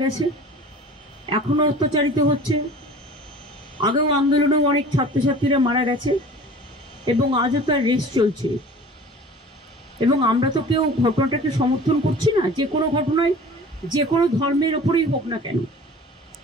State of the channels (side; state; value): both; normal; correlation 0.43